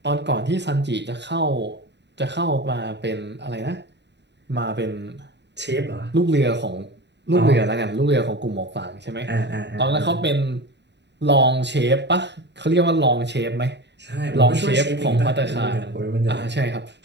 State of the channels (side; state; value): left; late; 0.51 ms